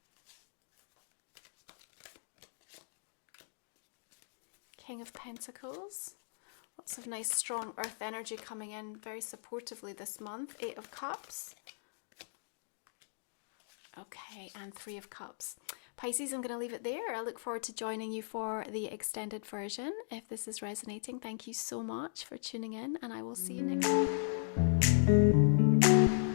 King of Pentacles. Lots of nice strong earth energy coming in very supportively this month. Eight of Cups. Okay, and Three of Cups. Pisces, I'm going to leave it there. I look forward to joining you for the extended version. If this is resonating, thank you so much for tuning in, and I will see you next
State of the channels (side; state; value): right; silent; digital silence